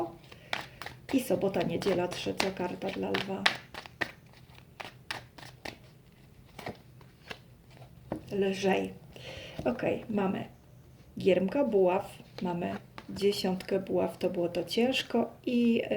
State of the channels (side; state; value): both; identical; correlation 1.00